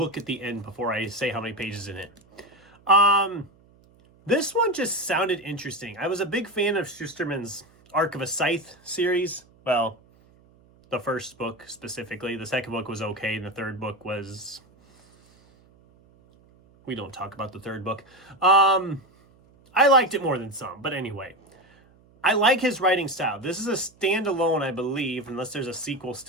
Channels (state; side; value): noise; right; hum, 29 dB below the sound